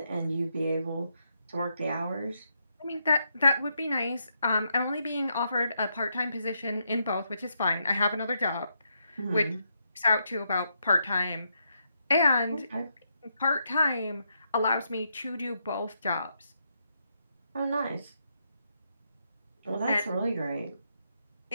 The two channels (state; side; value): inverted; both; correlation -0.80